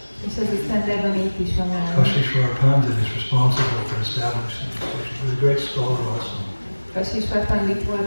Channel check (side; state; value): both; inverted; correlation -1.00